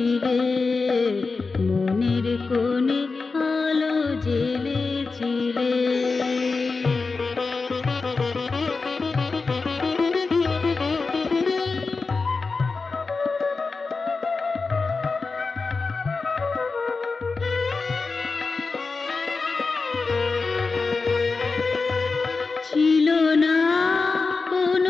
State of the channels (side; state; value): right; quieter; 4.2 dB